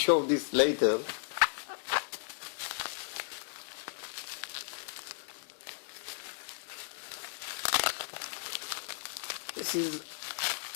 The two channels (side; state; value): right; silent; digital silence